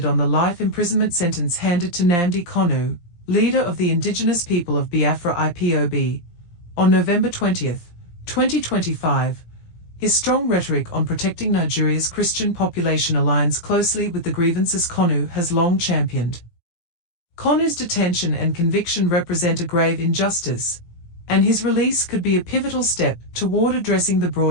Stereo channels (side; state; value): right; late; 17 ms